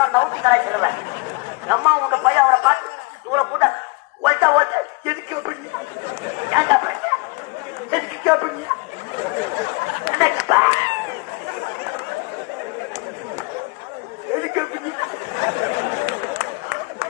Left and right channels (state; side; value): quieter; right; 28.0 dB